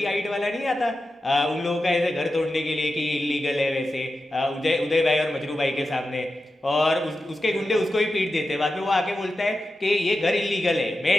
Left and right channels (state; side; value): normal; both; correlation 0.91